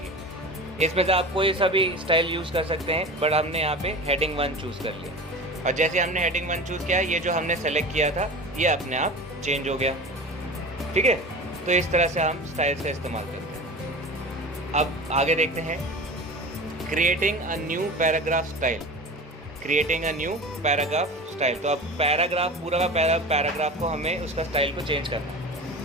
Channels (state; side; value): normal; both; correlation 0.33